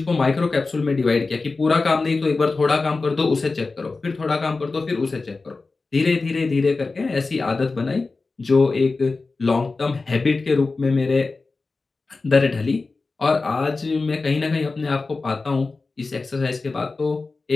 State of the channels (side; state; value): right; quieter; 3.8 dB